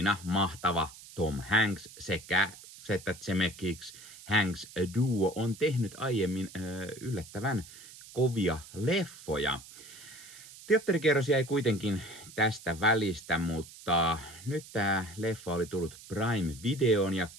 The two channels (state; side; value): noise; right; hiss, 18 dB below the sound